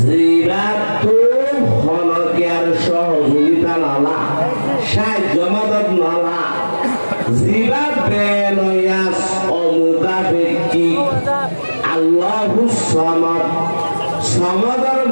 হনকিয়ার সহযোগিতা নালা সাহায্য মদত নালা জিরাত বেনয়াস অমুকা ব্যক্তি আল্লাহুস সামাদ সমাদর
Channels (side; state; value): both; inverted; correlation -1.00